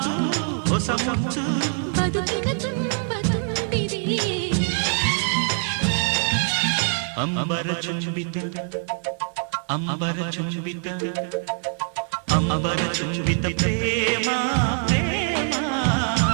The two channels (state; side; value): silent; left; 57 dB below the other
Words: ಹೊಸ ಮುತ್ತು, ಬದುಕಿನ ತುಂಬ ತುಂಬಿದೆ. ಅಂಬರ ಚುಂಬಿತ ಅಂಬರ ಚುಂಬಿತ ಅಂಬರ ಚುಂಬಿತ ಪ್ರೇಮ ಪ್ರೇಮ,